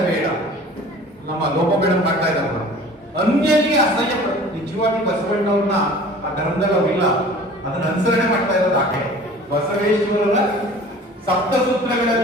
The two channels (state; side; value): normal; both; correlation 0.45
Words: ನಮ್ಮ ಲೋಪಬೇಡ ಮಾಡ್ತಾ ಇದ್ದಾರಲ್ಲ, ಅನ್ಯರಿಗೆ ಅಸಹ್ಯ ಪಡ. ನಿಜವಾಗಿ ಬಸವಣ್ಣವ್ರನ್ನ ಆ ಧರ್ಮದಲ್ಲಿ ಅವ್ರಿಲ್ಲ, ಅದನ್ನ ಅನುಸರಣೆ ಮಾಡ್ತಾ ಇರೋದು ಆಕೆ. ಬಸವೇಶ್ವರರ ಸಪ್ತ